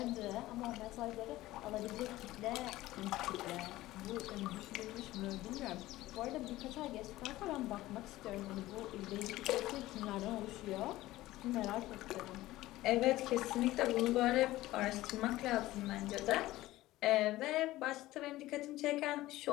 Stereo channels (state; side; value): quieter; right; 16.8 dB